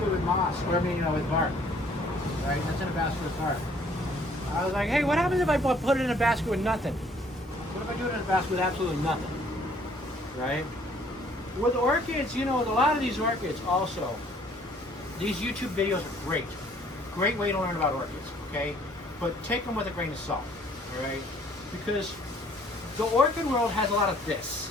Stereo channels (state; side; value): normal; both; correlation 0.60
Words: with moss, or I mean, with bark, right? That's in a basket with bark. I was like, hey, what happens if I put it in a basket with nothing? What if I do it in a basket with absolutely nothing, right? With orchids, with a lot of these orchids also, these YouTube videos are great. Great way to learn about orchids, okay? But take them with a grain of salt, all right? Because the orchid world has a lot of this,